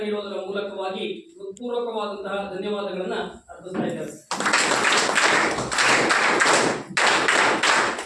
ನೀಡುವುದರ ಮೂಲಕವಾಗಿ ಹೃತ್ಪೂರ್ವಕವಾದಂತಹ ಧನ್ಯವಾದಗಳನ್ನ ಅರ್ಪಿಸ್ತಾ ಇದ್ದೇವೆ.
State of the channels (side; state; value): both; identical; correlation 1.00